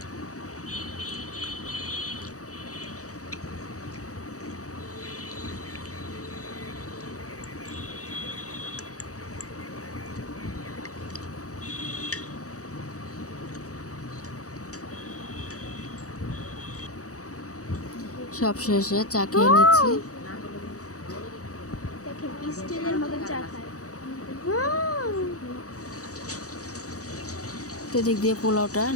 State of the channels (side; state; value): right; late; 0.66 ms